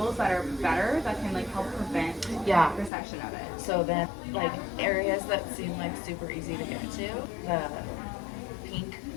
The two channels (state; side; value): drops out; right; at 2.9 s